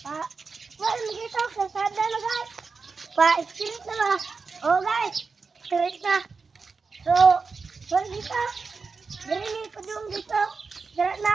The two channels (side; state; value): left; quieter; 4.7 dB